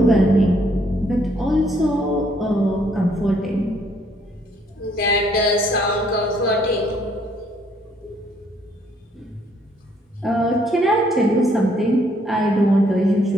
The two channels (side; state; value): both; normal; correlation 0.67